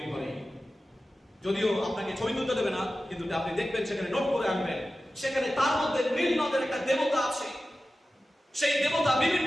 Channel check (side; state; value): both; normal; correlation 0.94